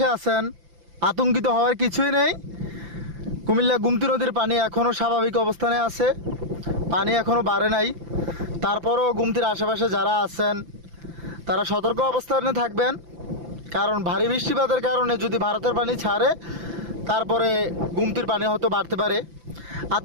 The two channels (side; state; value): left; late; 5.9 ms